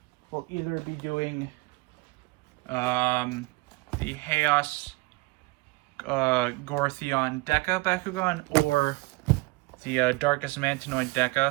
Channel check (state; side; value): quieter; left; 24.9 dB